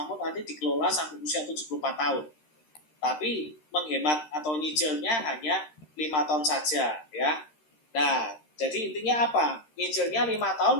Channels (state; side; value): late; right; 13 ms